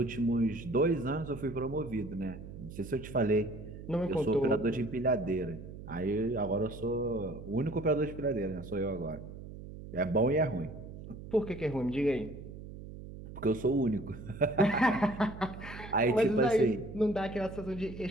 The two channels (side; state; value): right; noise; hum, 13 dB below the sound